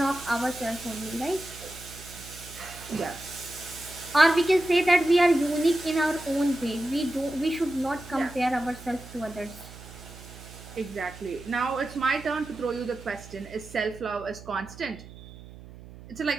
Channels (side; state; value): right; noise; hum, 17 dB below the sound